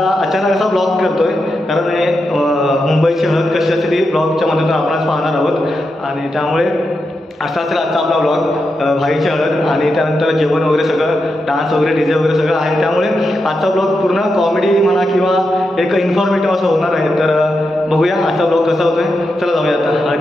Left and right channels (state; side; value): normal; both; correlation 0.87